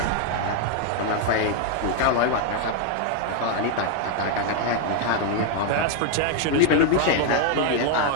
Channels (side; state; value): both; different; correlation 0.01